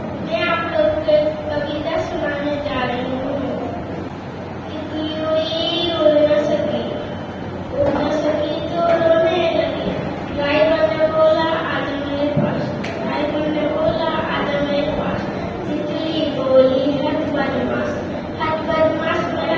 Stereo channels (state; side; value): identical; both; correlation 1.00